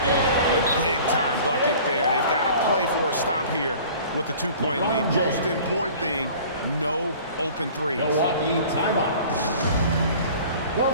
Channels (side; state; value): both; inverted; correlation -0.46